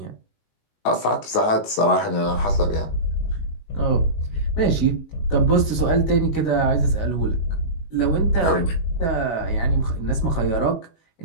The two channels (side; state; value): right; late; 19 ms